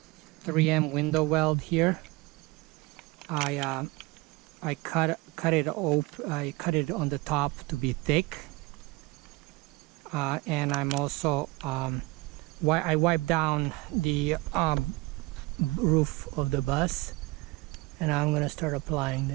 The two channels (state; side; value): quieter; left; 22.8 dB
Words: 3M Windo-Weld here. I cut it on the top to be thick, and I'm also I wiped down the roof of the bus, and I'm gonna start applying